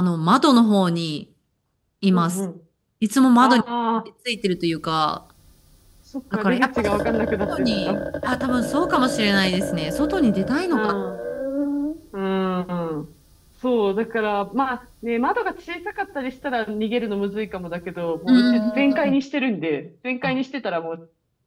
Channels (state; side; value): identical; both; correlation 1.00